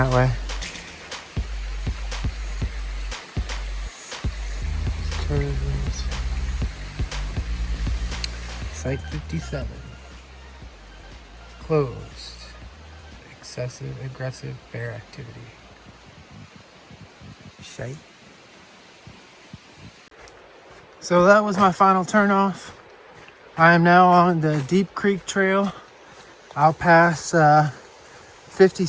way. Curves. Site 57. Closed. Excessive, aggressive bear activity. Site. So that was my final turn off. I am now on the Deep Creek Trail. I'll pass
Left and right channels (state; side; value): identical; both; correlation 1.00